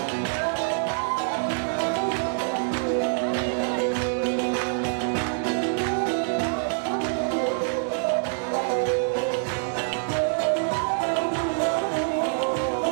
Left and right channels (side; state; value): left; silent; digital silence